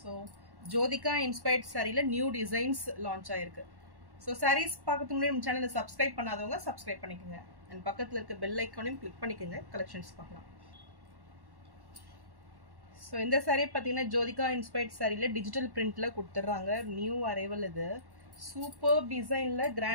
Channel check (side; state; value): left; late; 1.1 ms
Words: ஜோதிகா இன்ஸ்பயர்ட் சாரியில் நியூ டிசைன்ஸ் லான்ச் ஆயிருக்கு. ஸோ சாரீஸ் பார்க்கறதுக்கு முன்னாடி நம்ம சேனலை சப்ஸ்கிரைப் பண்ணாதவங்க சப்ஸ்கிரைப் பண்ணிக்கோங்க. அண்ட் பக்கத்தில் இருக்க பெல் ஐக்கானையும் கிளிக் பண்ணிக்கோங்க, கலெக்ஷன்ஸ் பார்க்கலாம். ஸோ இந்த சாரீ பார்த்தீங்கன்னா ஜோதிகா இன்ஸ்பயர்ட் சாரியில் டிஜிட்டல் பிரிண்டில் கொடுத்துட்றாங்க. நியூ அரைவல் இது. சூப்பர் டிசைனில்